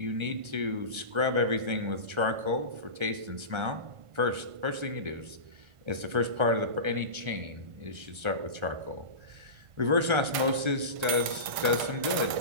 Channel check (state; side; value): late; left; 1.3 ms